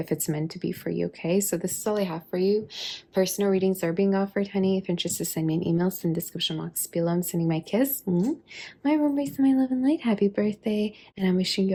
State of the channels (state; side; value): identical; both; correlation 1.00